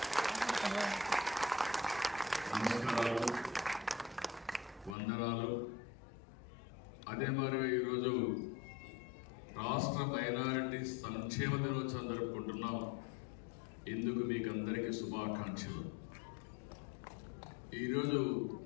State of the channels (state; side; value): drops out; right; at 5.0 s